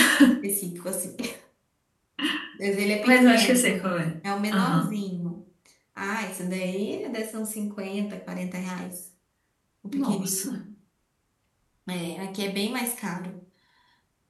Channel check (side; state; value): both; identical; correlation 1.00